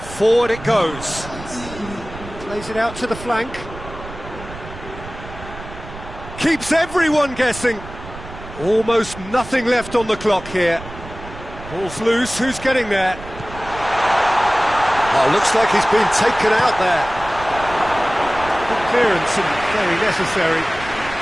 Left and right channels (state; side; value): noise; right; rumble, 14 dB below the sound